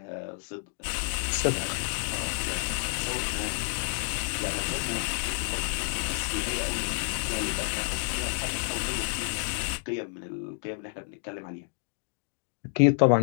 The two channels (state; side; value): silent; right; digital silence